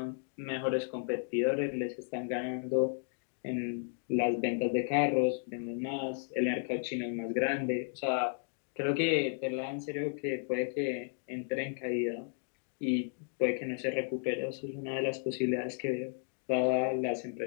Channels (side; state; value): right; silent; 55 dB below the other